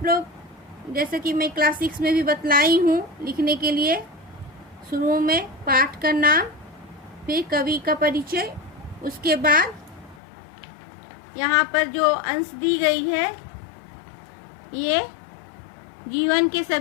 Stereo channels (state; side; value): drops out; right; at 10.2 s